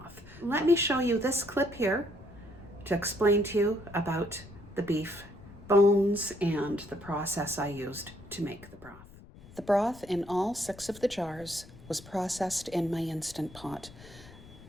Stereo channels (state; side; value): noise; left; rumble, 19 dB below the sound